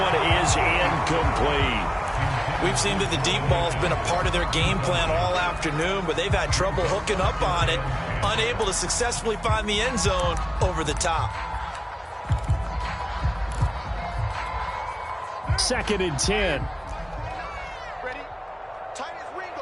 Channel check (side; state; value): both; identical; correlation 1.00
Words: is incomplete. We've seen that the deep ball's been a part of their game plan all afternoon, but they've had trouble hooking up on it, unable to successfully find the end zone over the top. 2nd and 10. Ready? Tight as